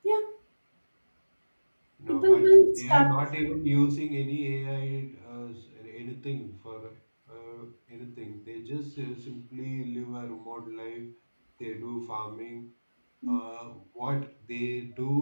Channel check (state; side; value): inverted; both; correlation -1.00